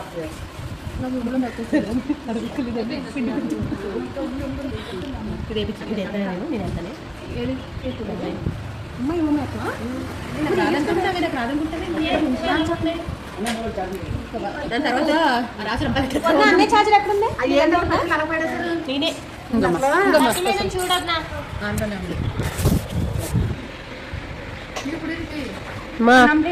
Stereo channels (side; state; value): both; identical; correlation 1.00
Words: దాని తర్వాత అన్నీ ఛార్జర్ ఎక్కడుంది నేనే చూడన్నా